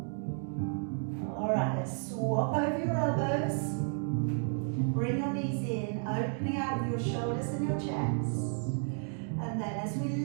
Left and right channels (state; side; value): silent; left; 56 dB below the other